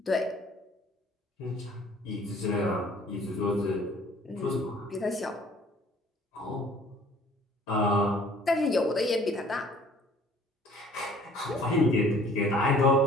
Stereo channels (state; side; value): normal; both; correlation 0.54